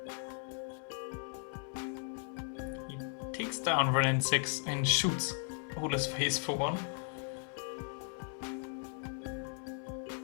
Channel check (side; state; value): right; silent; 53 dB below the other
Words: down Renin 6 and shoots Ole's face for one.